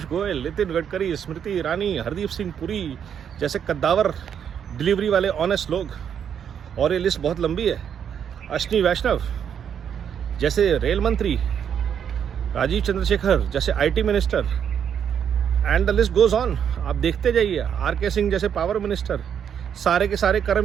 गोयल, नितिन गडकरी, स्मृति ईरानी, हरदीप सिंह पुरी जैसे कद्दावर डिलीवरी वाले ऑनेस्ट लोग। और ये लिस्ट बहुत लंबी है। अश्विनी वैष्णव जैसे रेल मंत्री, राजीव चंद्रशेखर जैसे IT minister, and the list goes on. आप देखते जाइए। आरके सिंह जैसे पावर मिनिस्टर, सारे के सारे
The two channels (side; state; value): left; quieter; 8.3 dB